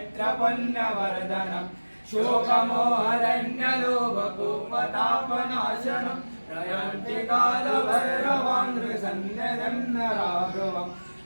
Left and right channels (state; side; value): inverted; both; correlation -1.00